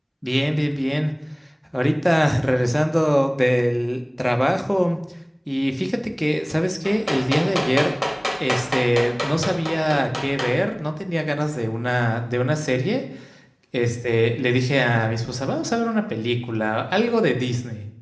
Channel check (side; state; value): both; identical; correlation 1.00